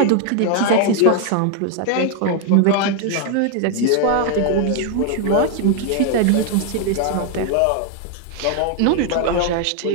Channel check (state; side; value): different; both; correlation 0.00